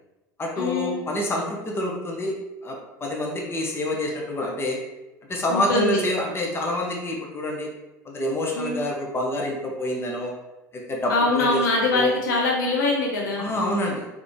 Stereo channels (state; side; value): normal; both; correlation 0.30